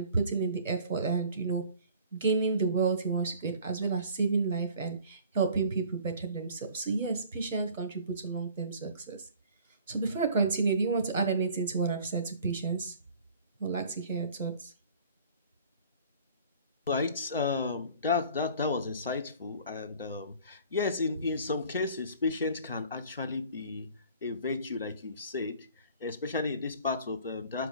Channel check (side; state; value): both; inverted; correlation -0.49